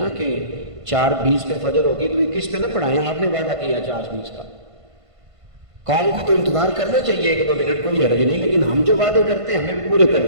کہ 4:20 پہ فجر ہوگی تو 21 پہ نہ پڑھائیں، آپ نے وعدہ کیا 4:20 کا. قوم کو تو انتظار کرنا چاہیے 1-2 منٹ، کوئی حرج نہیں، لیکن ہم جو وعدے کرتے ہیں ہمیں پورے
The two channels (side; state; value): left; late; 1.5 ms